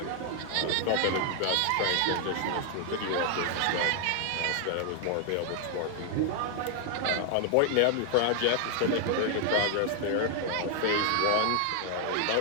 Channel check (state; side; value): different; both; correlation 0.00